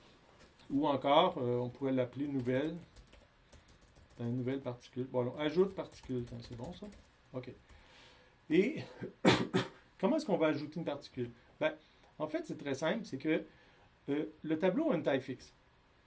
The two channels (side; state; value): both; identical; correlation 1.00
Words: Ou encore, on pourrait l'appeler nouvelle. Une nouvelle particule. Bon, alors, ajoute particule. C'est bon, ça? OK. Et comment est-ce qu'on va ajouter une particule? Ben, en fait, c'est très simple. C'est que le tableau a une taille fixe.